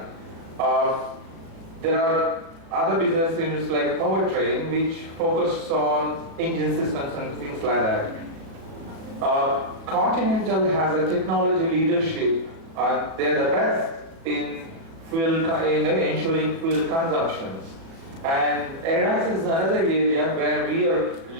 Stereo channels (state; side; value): late; left; 36 ms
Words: There are other business units like Powertrain, which focus on engine systems and things like that. Continental has a technology leadership. They're the best in ensuring fuel consumptions. And ADAS is another area where we are